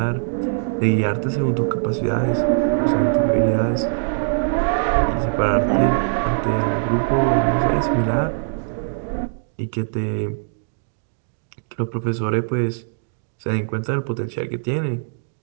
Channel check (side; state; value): left; silent; digital silence